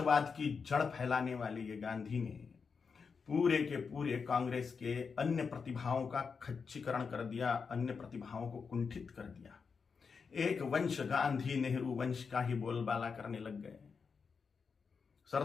की जड़ फैलाने वाले ये गांधी ने पूरे के पूरे कांग्रेस के अन्य प्रतिभाओं का खच्चीकरण कर दिया, अन्य प्रतिभाओं को कुंठित कर दिया। एक वंश गांधी नेहरू वंश का ही बोलबाला करने लग गए।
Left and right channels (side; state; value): right; quieter; 5.5 dB